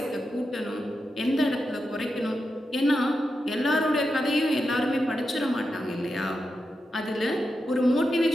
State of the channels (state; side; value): normal; both; correlation 0.88